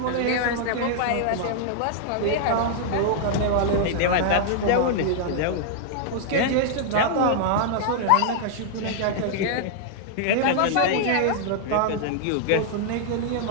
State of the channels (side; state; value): both; different; correlation -0.01